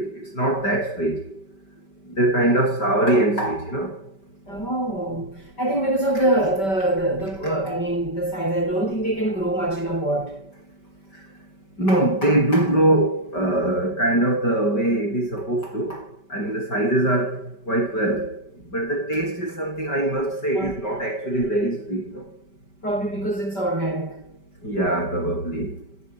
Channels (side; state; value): right; late; 5.2 ms